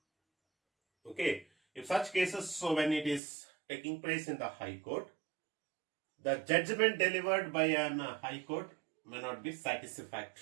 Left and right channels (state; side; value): drops out; left; at 3.2 s